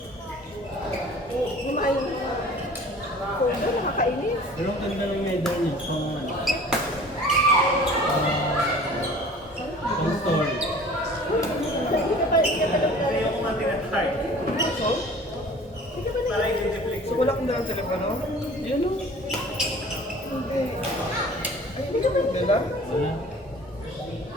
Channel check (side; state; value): both; normal; correlation 0.46